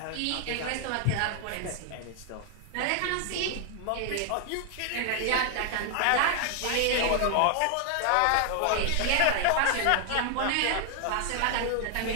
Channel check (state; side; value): different; both; correlation 0.00